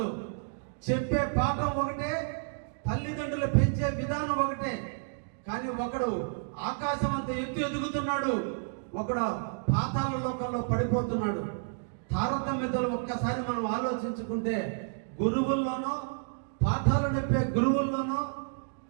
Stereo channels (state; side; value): silent; left; digital silence